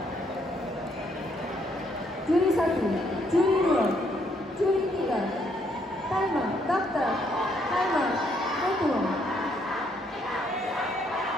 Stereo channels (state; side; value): normal; both; correlation 0.71